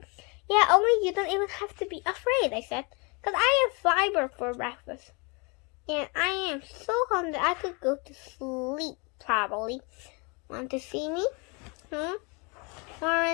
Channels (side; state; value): right; quieter; 31.3 dB